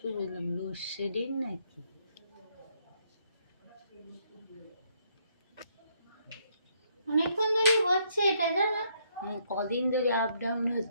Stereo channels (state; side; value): inverted; both; correlation -0.72